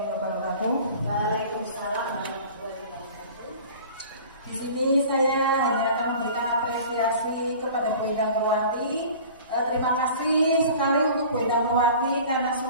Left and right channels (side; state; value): both; inverted; correlation -0.43